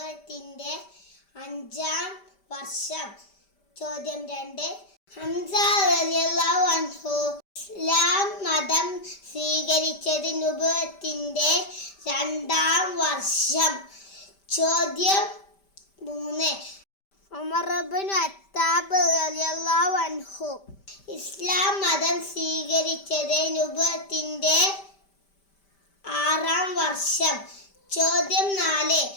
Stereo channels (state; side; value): late; right; 5.1 ms